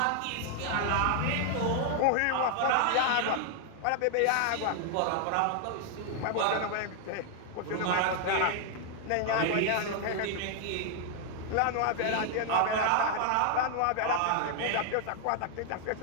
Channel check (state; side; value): different; both; correlation 0.00